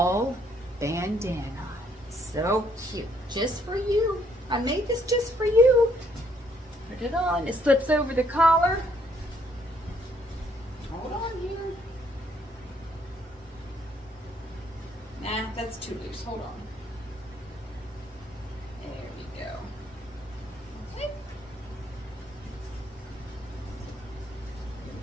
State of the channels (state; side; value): normal; both; correlation 0.68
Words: bandana. So cute. Just for you. I made this just for you. Put it on. It slips over the collar. Hold on here. Nah, that's too loose. Hold on. There we go. Okay.